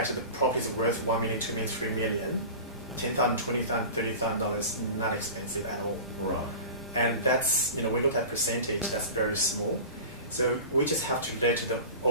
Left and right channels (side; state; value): both; inverted; correlation -0.34